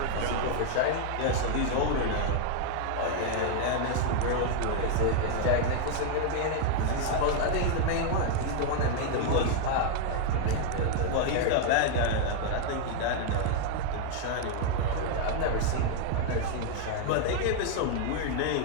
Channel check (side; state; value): both; different; correlation 0.00